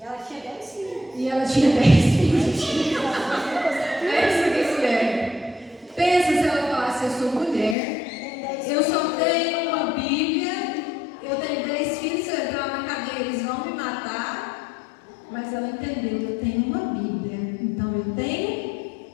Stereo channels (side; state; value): right; drops out; at 7.8 s